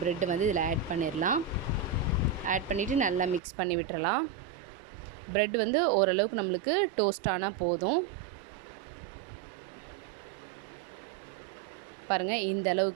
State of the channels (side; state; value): left; drops out; at 3.4 s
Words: ப்ரெட்டை வந்து இதில் ஆட் பண்ணிடலாம். ஆட் பண்ணிவிட்டு நல்லா மிக்ஸ் பண்ணி விட்டுறலாம். ப்ரெட் வந்து ஓரளவுக்கு நம்மளுக்கு டோஸ்ட் ஆனால் போதும். பாருங்கள், இந்த